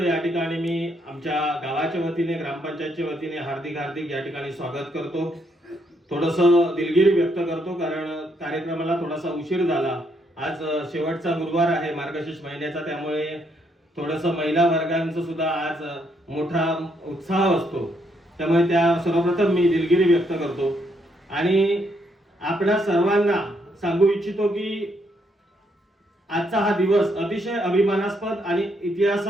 या ठिकाणी मी आमच्या गावाच्या वतीने ग्रामपंचायतच्या वतीने हार्दिक हार्दिक या ठिकाणी स्वागत करतो। थोडंसं दिलगिरी व्यक्त करतो कारण कार्यक्रमाला थोडासा उशीर झाला। आज शेवटचा गुरुवार आहे मार्गशीर्ष महिन्याचा, त्यामुळे थोडंसं महिला वर्गांचं सुद्धा आज मोठा उत्साह असतो, त्यामुळे त्या सर्वप्रथम मी दिलगिरी व्यक्त करतो आणि आपल्या सर्वांना सांगू इच्छितो की आजचा हा दिवस अतिशय अभिमानास्पद आणि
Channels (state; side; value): normal; both; correlation 0.74